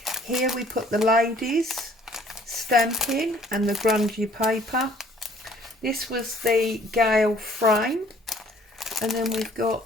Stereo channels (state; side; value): normal; both; correlation 0.58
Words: Here we put the ladies stamping and the grungy paper. This was the Gale frame, and then we've got